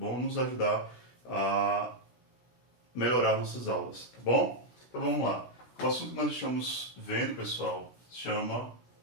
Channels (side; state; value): right; late; 16 ms